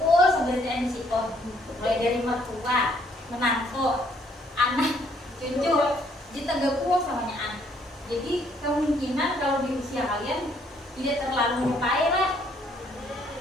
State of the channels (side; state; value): both; normal; correlation 0.66